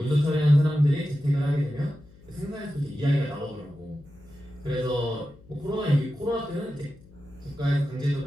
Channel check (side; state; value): left; noise; hum, 24 dB below the sound